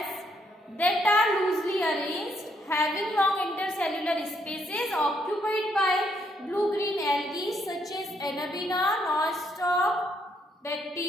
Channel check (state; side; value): normal; both; correlation 0.73